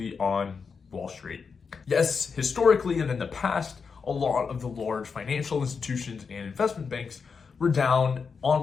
on Wall Street. Yes, historically and in the past, a lot of the large financial institutions and investment banks were down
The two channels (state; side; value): quieter; right; 5.5 dB